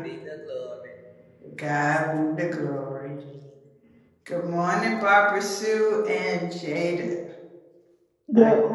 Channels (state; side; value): identical; both; correlation 1.00